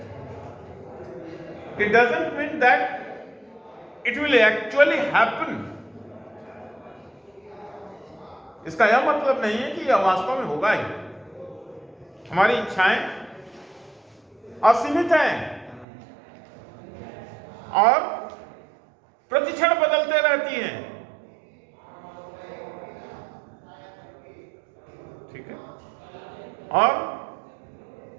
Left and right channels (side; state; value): left; drops out; at 15.9 s